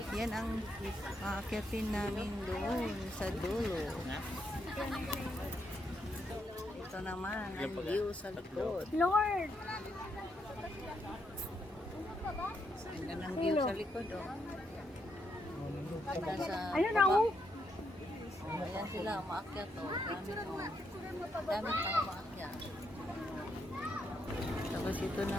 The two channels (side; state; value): both; normal; correlation 0.78